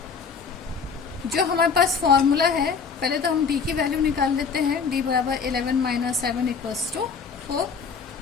जो हमारे पास फॉर्मूला है, पहले तो हम D की वैल्यू निकाल लेते हैं। D बराबर 11 - 7 = 4।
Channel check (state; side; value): quieter; right; 5.7 dB